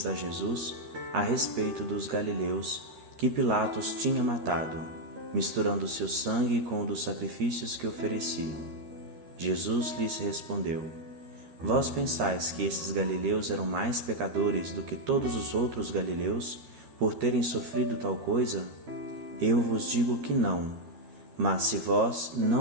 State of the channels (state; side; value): late; left; 13 ms